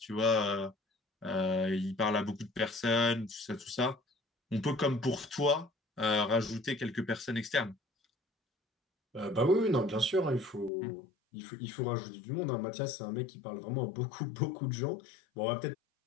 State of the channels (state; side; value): drops out; right; at 10.7 s